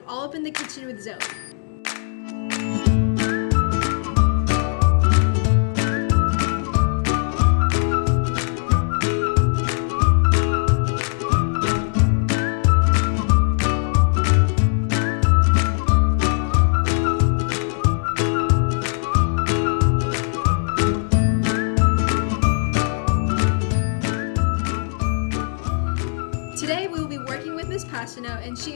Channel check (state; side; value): silent; right; 66 dB below the other